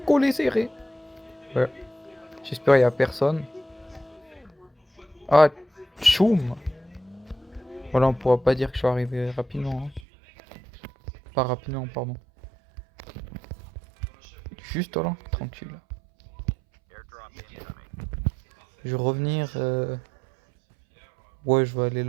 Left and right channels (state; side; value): drops out; left; at 10.1 s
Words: Collés serrés. Ouais. J'espère qu'il y a personne. Ah, tchoum. Voilà, on pourra pas dire que je suis arrivé rapidement, hein. Pas rapidement, pardon. Juste là, tranquille. Je vais revenir. Ouais, je vais aller